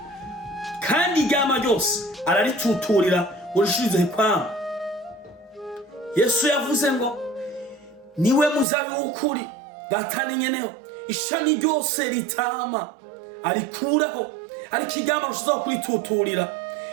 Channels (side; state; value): left; drops out; at 8.7 s